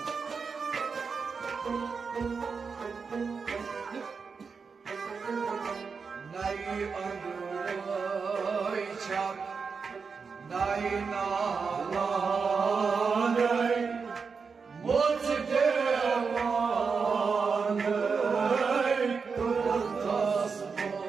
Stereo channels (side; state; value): left; quieter; 5.3 dB